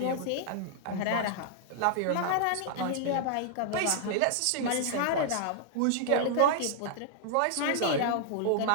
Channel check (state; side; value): different; both; correlation -0.01